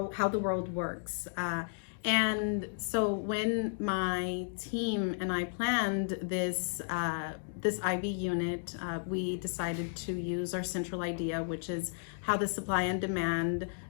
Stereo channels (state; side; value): silent; right; digital silence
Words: the world works. And so when my team and I planned this IB unit, we decided to use our central idea, which is how the supply and demand